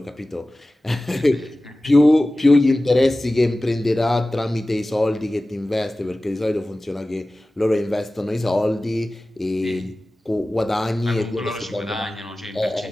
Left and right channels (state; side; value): normal; both; correlation 0.96